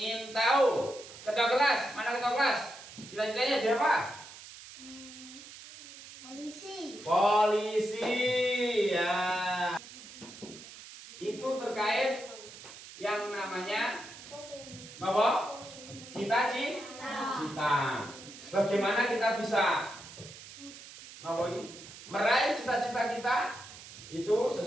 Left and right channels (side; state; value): right; noise; hiss, 16 dB below the sound